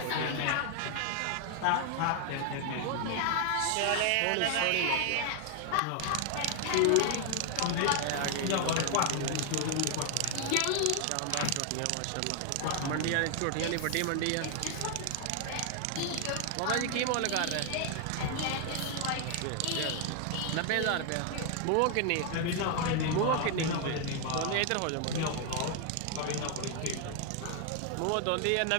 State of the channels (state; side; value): different; both; correlation 0.00